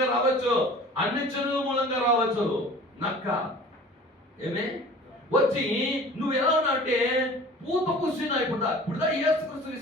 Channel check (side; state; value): both; normal; correlation 0.44